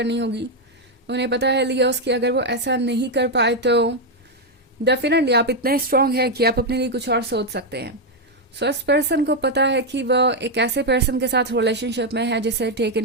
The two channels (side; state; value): both; normal; correlation 0.02